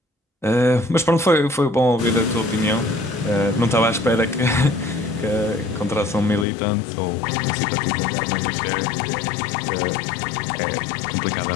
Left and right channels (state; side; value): drops out; right; at 6.5 s